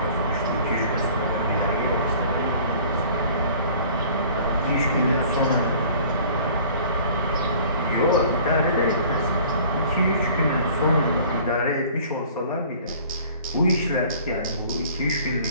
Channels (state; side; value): inverted; both; correlation -0.50